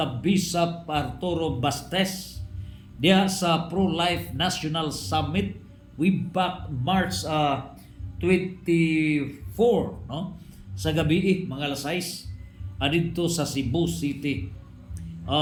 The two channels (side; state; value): both; identical; correlation 1.00